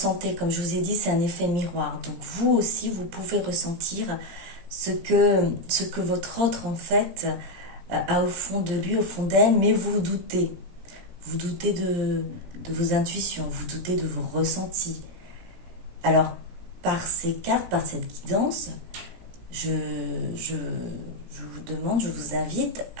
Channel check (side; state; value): left; late; 17 ms